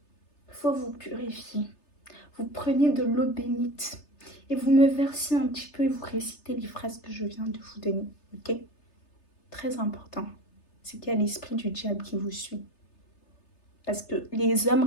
il faut vous purifier. Vous prenez de l'eau bénite et vous me versez un petit peu et vous récitez les phrases que je viens de vous donner, ok? Très important, c'est qu'il y a l'esprit du diable qui vous suit. Parce que les hommes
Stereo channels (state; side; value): late; right; 3.3 ms